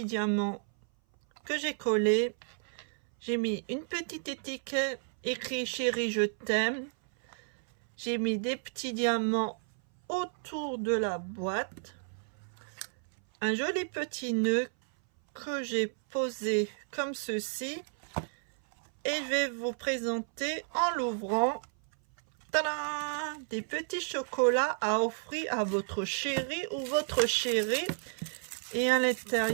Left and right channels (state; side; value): silent; left; 57 dB below the other